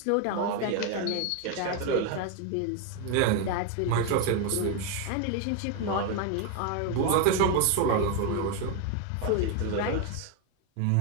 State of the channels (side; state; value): both; different; correlation 0.01